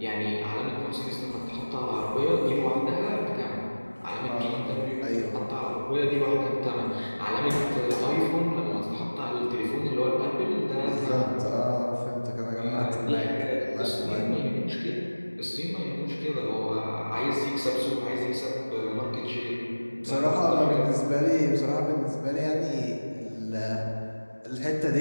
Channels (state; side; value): inverted; both; correlation -1.00